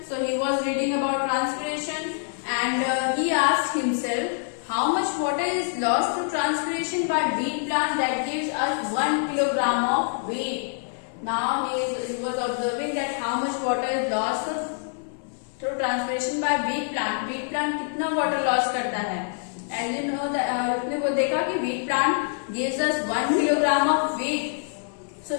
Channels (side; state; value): right; silent; 61 dB below the other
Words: So he was reading about transpiration and he asked himself how much water is lost to transpiration by wheat plant that gives us 1 kilogram of wheat. Now he was observing that how much water is lost through transpiration by wheat plant. Wheat plant कितना water loss करता है? As you know, उसने वो देखा कि wheat plant gives us 1 kilogram of wheat. So